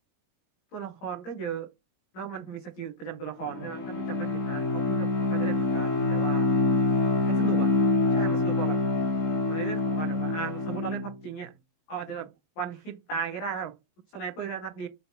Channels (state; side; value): late; right; 19 ms